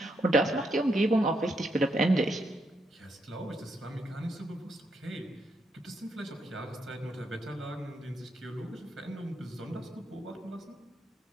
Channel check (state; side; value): normal; both; correlation 0.79